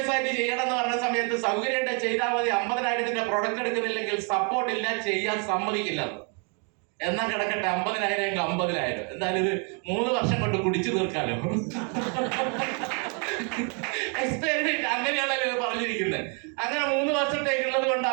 ആയിട്ട് ചെയ്യണം എന്ന് പറഞ്ഞ സമയത്ത് സൗകര്യമായിട്ട് ചെയ്താൽ മതി, 50,000 പ്രൊഡക്റ്റ് എടുക്കുന്നില്ലെങ്കിൽ സപ്പോർട്ട് ഇല്ല, ചെയ്യാൻ സമ്മതിക്കില്ല. എന്നാ കിടക്കട്ടെ, 50,000 50,000, എന്തായാലും ഇത് 3 വർഷം കൊണ്ട് കുടിച്ചു തീർക്കാലോ. എക്സ്പെരിമെന്റ് അങ്ങനെയാണല്ലോ പറഞ്ഞിരിക്കുന്നത്. അങ്ങനെ 3 വർഷത്തേക്കുള്ളത് കൊണ്ട്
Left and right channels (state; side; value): quieter; left; 37.8 dB